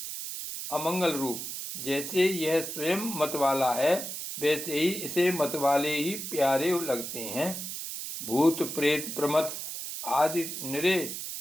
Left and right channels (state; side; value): noise; right; hiss, 6 dB below the sound